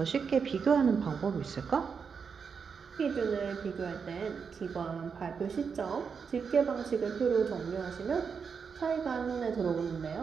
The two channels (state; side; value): quieter; left; 6.0 dB